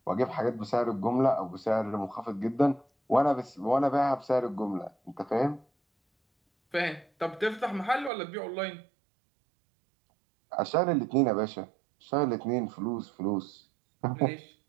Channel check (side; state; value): left; drops out; at 8.1 s